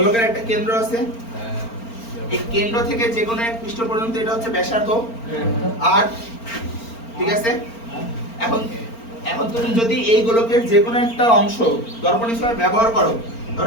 একটা কেন্দ্র আছে, এই কেন্দ্র থেকে যে কোনো এক পৃষ্ঠ পর্যন্ত এটা হচ্ছে ব্যাসার্ধ আর, ঠিক আছে? এখন এখন তুমি যদি এই গোলকের যে কোনো একটা অংশ দর্পণ হিসেবে ব্যবহার করো,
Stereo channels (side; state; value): right; late; 4.4 ms